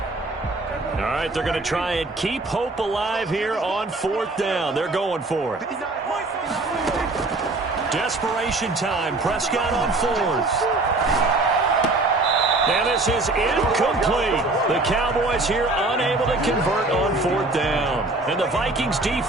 All right, they're going to try and keep hope alive here on 4th down. They're going for it. Desperation time. Prescott on 4th. And this is incomplete. The Cowboys here unable to convert on 4th down. And the Vikings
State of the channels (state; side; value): quieter; left; 3.1 dB